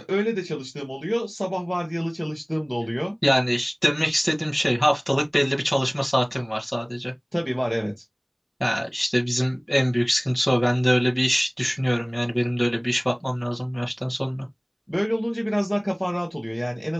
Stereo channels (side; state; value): both; identical; correlation 1.00